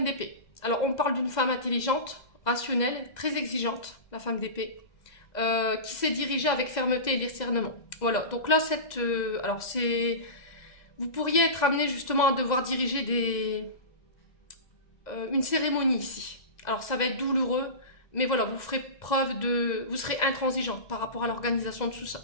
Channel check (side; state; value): right; late; 2.0 ms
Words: d'épée. Alors, on parle d'une femme intelligente, rationnelle, très exigeante, la femme d'épée, qui s'est dirigée avec fermeté et discernement. Voilà, donc là, vous pourriez être amené justement à devoir diriger une cérémonie ici. Alors ça va être douloureux, mais voilà, vous serez intransigeant par rapport à l'organisation de tout